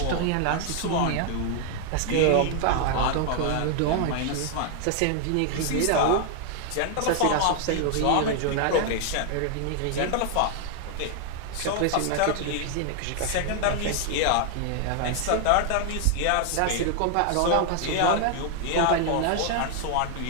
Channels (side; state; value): both; different; correlation 0.00